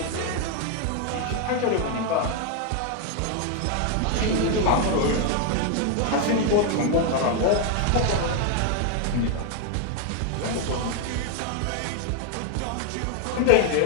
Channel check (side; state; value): both; different; correlation 0.01